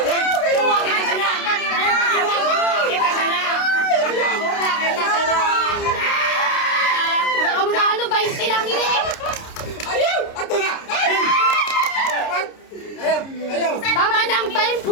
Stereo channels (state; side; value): late; right; 29 ms